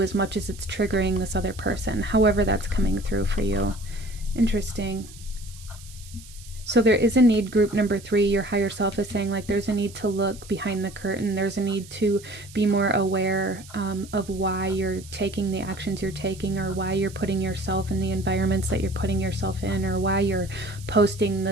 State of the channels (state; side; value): noise; right; hiss, 19 dB below the sound